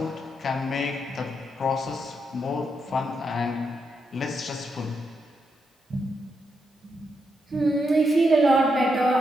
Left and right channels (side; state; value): both; normal; correlation 0.82